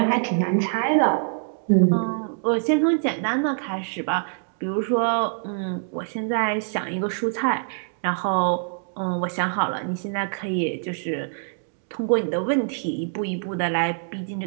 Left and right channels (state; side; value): silent; left; digital silence